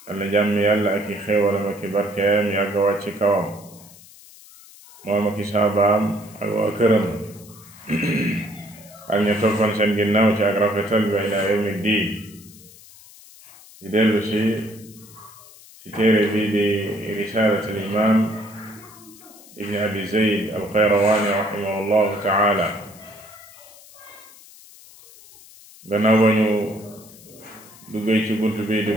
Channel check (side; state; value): left; noise; hiss, 22 dB below the sound